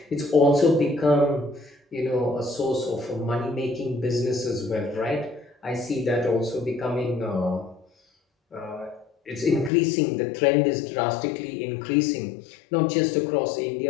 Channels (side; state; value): right; drops out; at 9.7 s